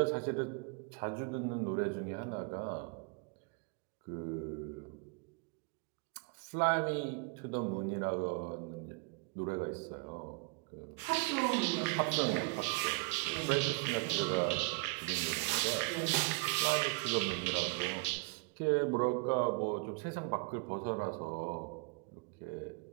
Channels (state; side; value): quieter; left; 27.4 dB